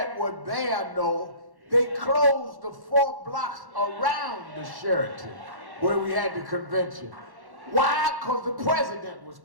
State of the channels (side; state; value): left; late; 1.1 ms